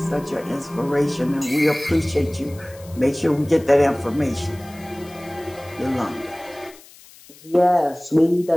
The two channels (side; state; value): left; noise; hiss, 23 dB below the sound